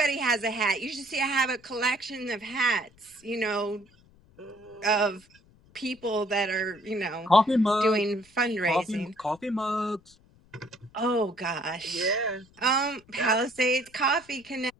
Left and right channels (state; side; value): noise; left; rumble, 29 dB below the sound